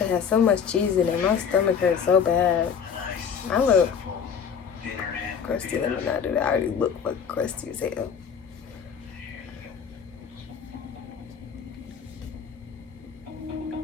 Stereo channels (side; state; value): right; quieter; 7.0 dB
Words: has so much cheese in it. My stomach hurts so bad. Nice. I look simple dinner and crusty. Let me not do that. I already look like crusty as hell.